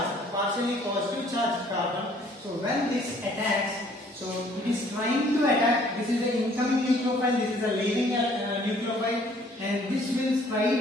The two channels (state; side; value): normal; both; correlation 0.59